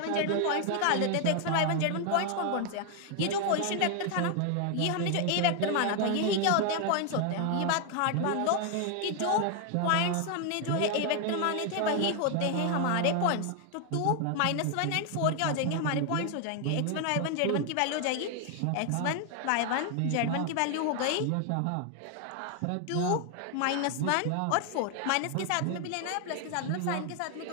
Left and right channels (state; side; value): different; both; correlation 0.00